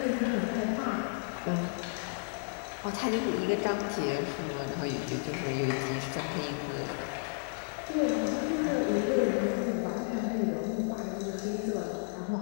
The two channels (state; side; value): silent; right; digital silence